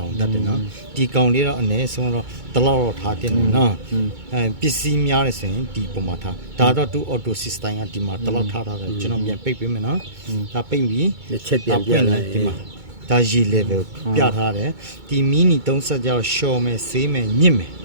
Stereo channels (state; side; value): late; left; 2.2 ms